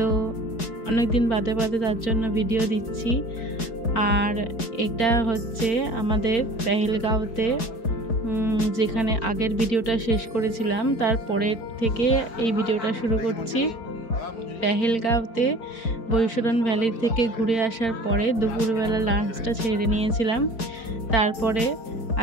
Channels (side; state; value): right; late; 4.7 ms